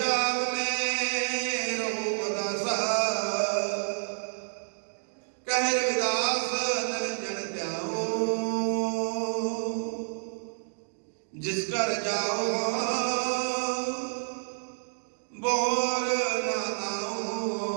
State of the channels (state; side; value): silent; left; digital silence